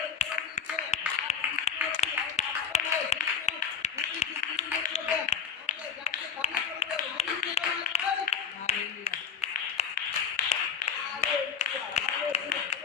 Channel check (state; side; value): quieter; right; 6.9 dB